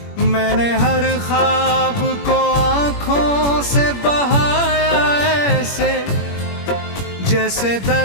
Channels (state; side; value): late; right; 21 ms